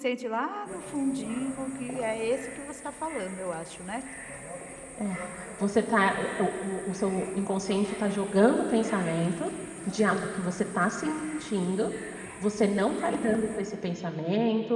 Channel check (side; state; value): both; identical; correlation 1.00